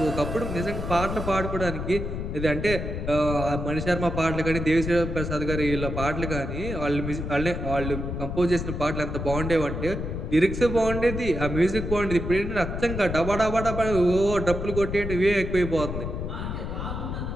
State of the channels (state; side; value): noise; left; rumble, 4 dB below the sound